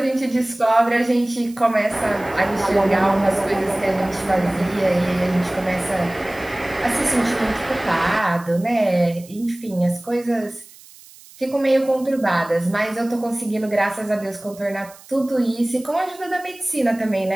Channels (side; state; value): right; noise; hiss, 22 dB below the sound